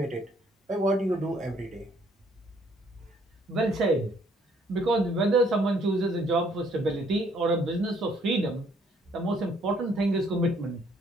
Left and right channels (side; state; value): both; normal; correlation 0.65